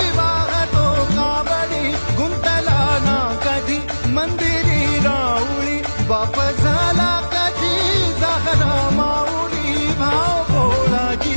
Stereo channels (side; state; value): both; inverted; correlation -1.00